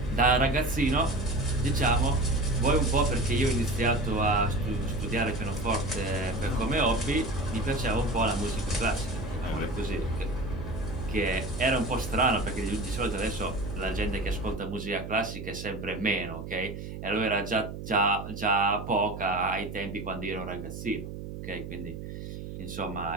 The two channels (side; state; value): right; noise; hum, 9 dB below the sound